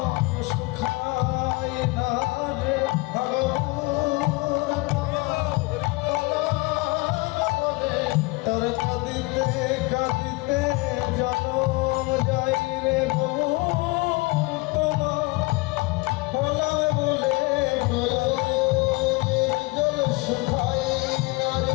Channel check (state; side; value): quieter; right; 24.7 dB